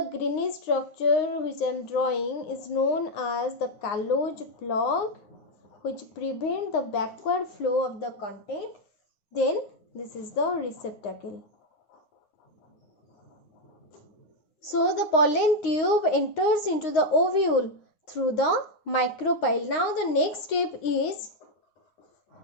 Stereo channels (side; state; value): right; late; 9.6 ms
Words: greenish structure which I am drawing is known as the callose plug, which prevent the backward flow of the content. Then this is the receptacle. So the pollen tube enters into the ovule through the micropyle. Now the next step is